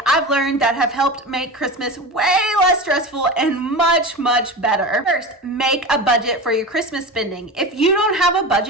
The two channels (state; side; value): normal; both; correlation 0.28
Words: I've learned that have helped make Christmas way less stressful and much, much better. First, make a budget for your Christmas spending. If you don't have a